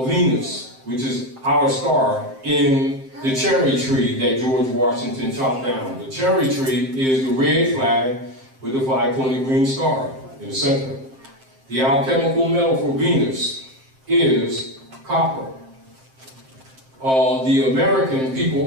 Venus, which is our star in the cherry tree that George Washington chopped down. The cherry tree is the red flag with the 5-pointed green star in the center. The alchemical metal for Venus is copper. The American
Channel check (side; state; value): left; late; 7.6 ms